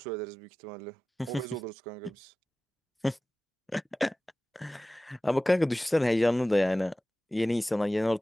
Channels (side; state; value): both; normal; correlation 0.97